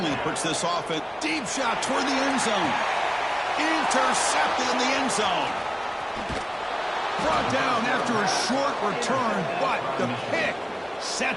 puts this offense. Deep shot toward the end zone. Intercepted in the end zone. Brought down after a short return, but the pick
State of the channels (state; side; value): identical; both; correlation 1.00